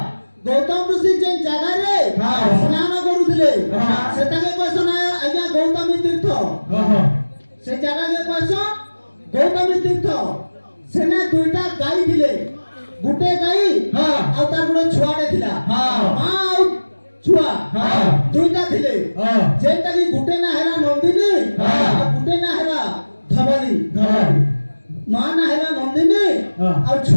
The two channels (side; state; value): both; inverted; correlation -1.00